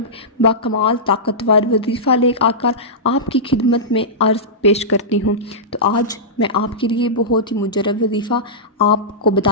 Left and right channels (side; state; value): both; normal; correlation -0.15